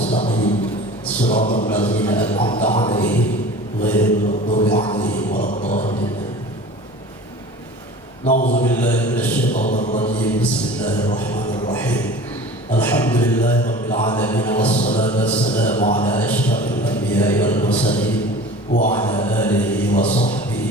صراط الذين أنعمت عليهم غير المغضوب عليهم ولا الضالين. نعوذ بالله من الشيطان الرجيم. بسم الله الرحمن الرحيم. الحمد لله رب العالمين والصلاة والسلام على أشرف الأنبياء والمرسلين وعلى آله وصحبه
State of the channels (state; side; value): normal; both; correlation 0.39